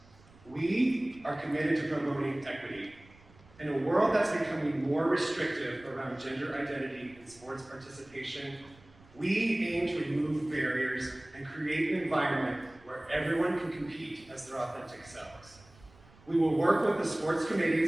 We are committed to promoting equity. In a world that's becoming more restrictive around gender identity and sports participation, we aim to remove barriers and create an environment where everyone can compete as their authentic selves. We will work with the sports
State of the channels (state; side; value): noise; right; rumble, 26 dB below the sound